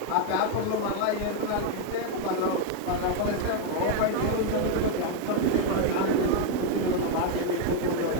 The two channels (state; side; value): different; both; correlation 0.01